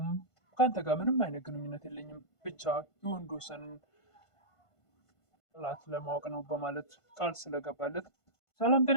ከአንተ ጋር ምንም አይነት ግንኙነት የለኝም፣ ብቻ የወንዶሰንን ጥላት ለማወቅ ነው በማለት ቃል ስለገባለት ሰላም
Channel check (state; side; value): late; right; 1.5 ms